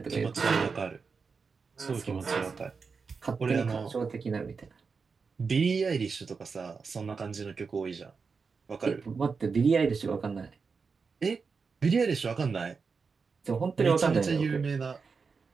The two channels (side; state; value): left; quieter; 5.1 dB